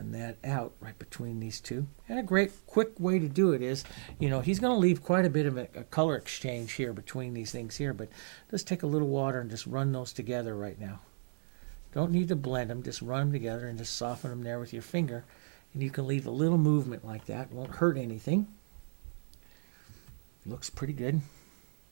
that out right between these two. And a great quick way to do it is, he's going to leave quite a bit of a color exchange here between these things here, but just take a little water and just run those together right now. Don't need to blend them, just run them together and just soften them there with your finger. And you can leave a little movement like that. It won't hurt anything. Looks pretty good.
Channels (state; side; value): silent; left; digital silence